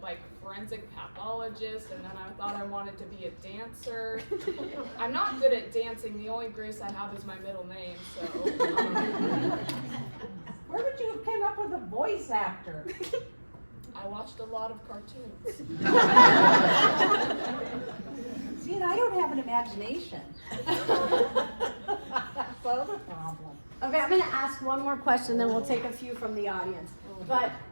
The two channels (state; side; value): inverted; both; correlation -1.00